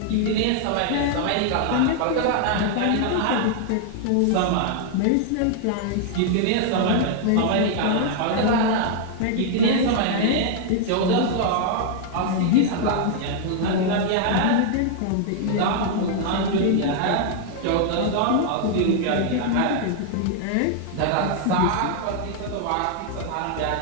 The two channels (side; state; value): both; different; correlation 0.00